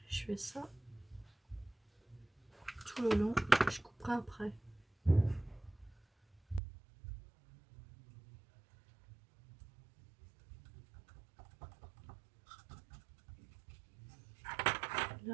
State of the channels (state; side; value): drops out; left; at 6.6 s